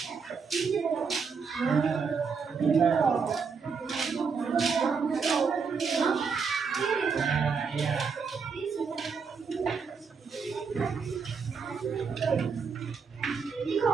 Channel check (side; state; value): left; quieter; 5.5 dB